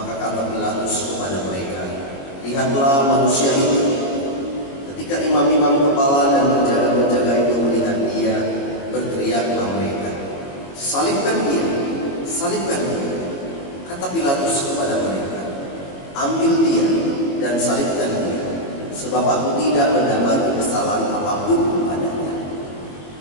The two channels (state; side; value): late; right; 22 ms